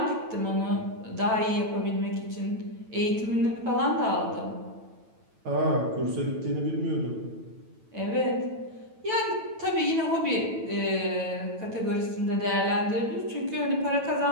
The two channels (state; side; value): late; left; 9.0 ms